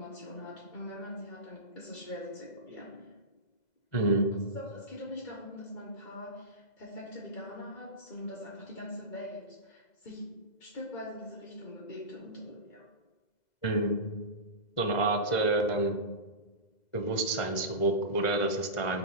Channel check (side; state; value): right; late; 2.0 ms